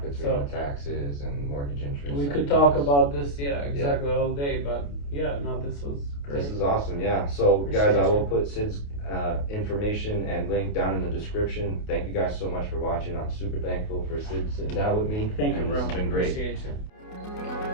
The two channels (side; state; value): right; late; 28 ms